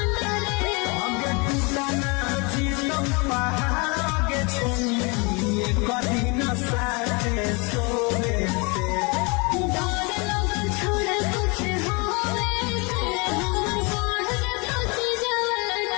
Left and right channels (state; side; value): quieter; right; 29.7 dB